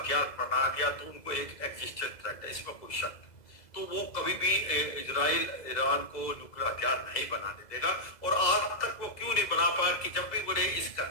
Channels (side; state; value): right; late; 2.0 ms